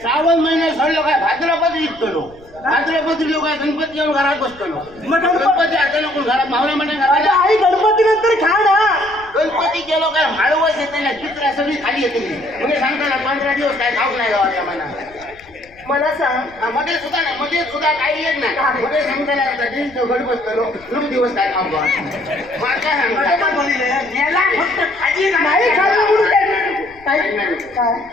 श्रावण महिना सरलो काय भाद्रपद विकतलो भाद्रपद लोक काय गणपती येऊन घरात बसतलो मग गणपती आता नको घरात मावळ्या म्हणून अगं घराला आई गणपती नंतर खा ना. गणपती गेलो काय माळवस येते ना चित्र सगळी खाली येते म्हणजे सांगता ना 15 दिवस काय खाऊ नाही गावाच्या मना मला सांग मध्ये सुद्धा काही येत नाही मध्ये सांगता नाही गड बसतलो 3 दिवस काय खाऊ मला काय सांगता याला फक्त खाजी नाही खाल्लं म्हणून काय काय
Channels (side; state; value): left; noise; rumble, 26 dB below the sound